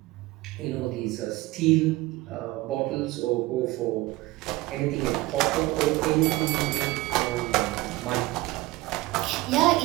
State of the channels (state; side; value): quieter; left; 19.8 dB